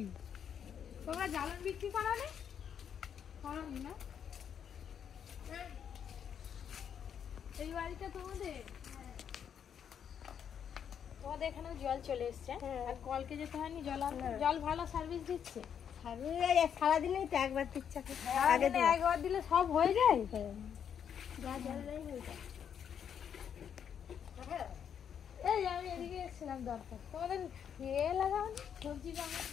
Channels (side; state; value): right; quieter; 8.2 dB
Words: তোমরা জ্বালন বিক্রি করনি? করনি না? এই বাড়িটা তোমাদের? তোমাদের এখানে জল চলে এসছে, আর কলকে যেতে হয়নি। জল ভালো সার্ভিস দিচ্ছে। সারাদিনেই তো একবার দিচ্ছে, একবার দিলে সব হয়ে যায়। এই আমি এদিকে এসেছিলাম দরকার। তোমাদের লাগাও নি সবজি বাগান,